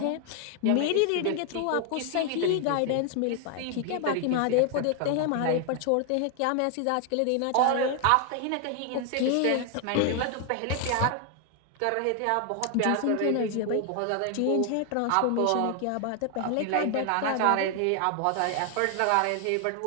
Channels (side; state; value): both; different; correlation 0.00